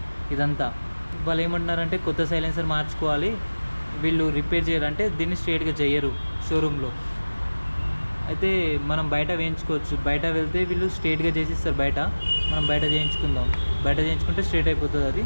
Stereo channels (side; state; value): both; inverted; correlation -1.00